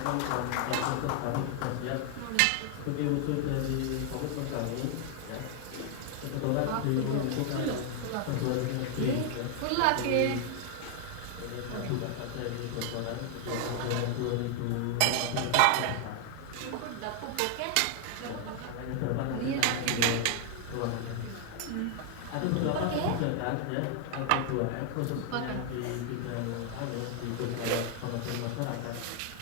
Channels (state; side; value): different; both; correlation 0.00